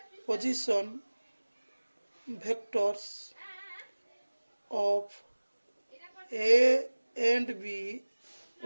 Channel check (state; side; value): inverted; both; correlation -1.00